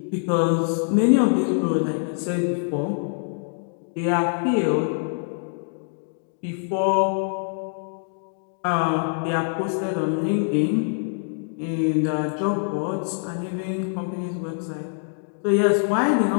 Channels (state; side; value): silent; right; digital silence